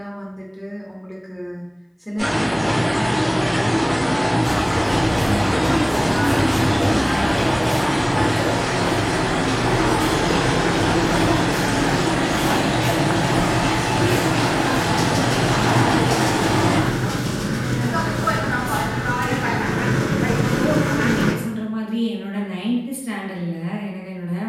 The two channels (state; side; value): identical; both; correlation 1.00